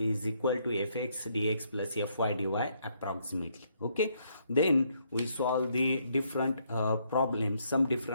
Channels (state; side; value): inverted; both; correlation -0.72